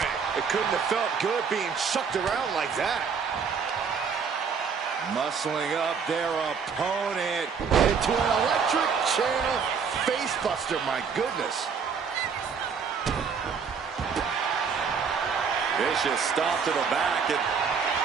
It couldn't have felt good being chucked around like that. Muscling up their opponent into an electric chair facebuster, my goodness. Vicious stomp to the back, and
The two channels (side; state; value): left; quieter; 6.1 dB